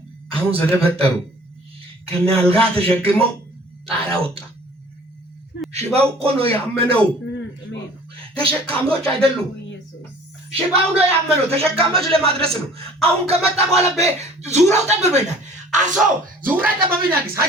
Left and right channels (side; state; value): both; normal; correlation 0.50